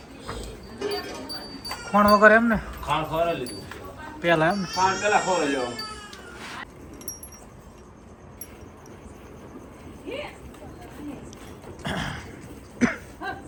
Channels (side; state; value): both; identical; correlation 1.00